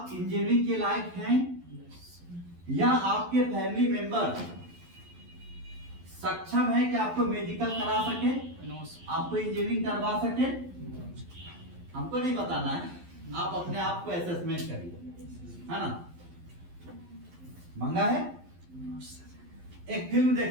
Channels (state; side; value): late; left; 11 ms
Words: इंजीनियरिंग के लायक हैं या आपके फैमिली मेंबर सक्षम है कि आपको मेडिकल करा सके, आपको इंजीनियरिंग करवा सके? हमको नहीं बताना है, आप अपने आप को असेसमेंट करिए, है ना। मंगा है। एक फिल्म